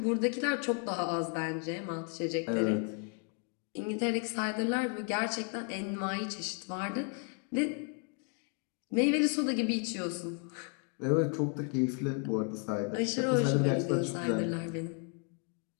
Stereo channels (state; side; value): quieter; right; 37.5 dB